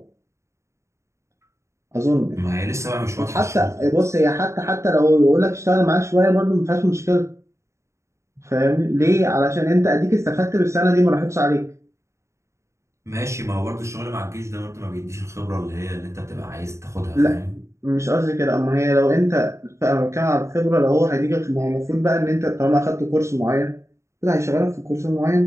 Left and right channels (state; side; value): late; left; 0.14 ms